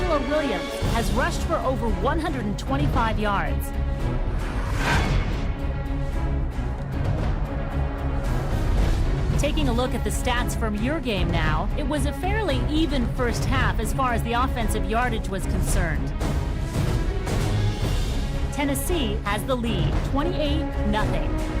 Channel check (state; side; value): identical; both; correlation 1.00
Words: Williams has rushed for over 125 yards. Taking a look at the stats from your game now, it was a fairly even first half as far as the offensive yardage was concerned. Tennessee has the lead, 28-0.